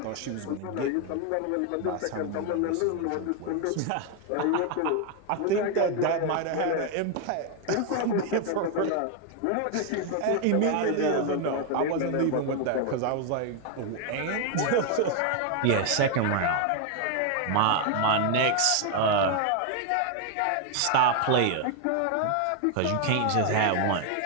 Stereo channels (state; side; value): different; both; correlation 0.01